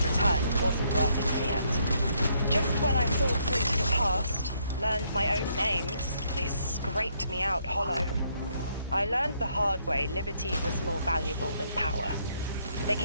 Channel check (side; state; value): both; inverted; correlation -0.72